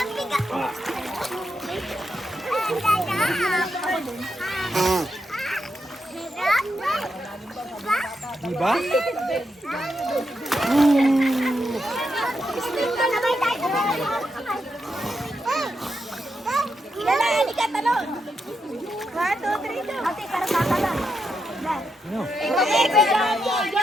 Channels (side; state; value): both; normal; correlation 0.84